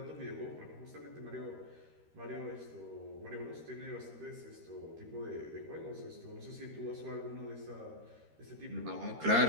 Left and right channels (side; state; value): left; late; 13 ms